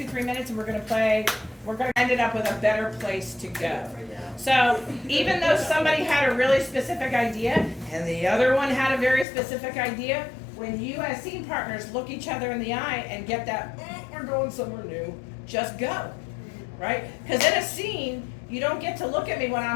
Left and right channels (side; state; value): right; drops out; at 9.2 s